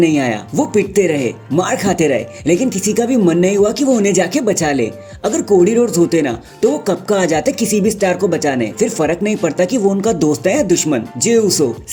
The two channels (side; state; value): both; identical; correlation 1.00